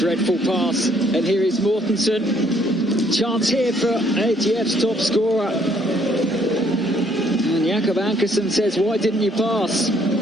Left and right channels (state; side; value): normal; both; correlation 0.66